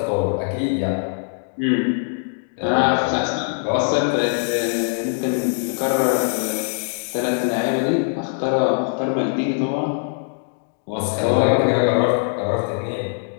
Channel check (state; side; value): silent; right; digital silence